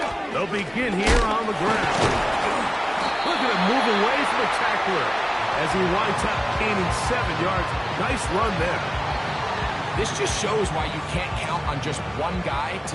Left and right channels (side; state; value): both; identical; correlation 1.00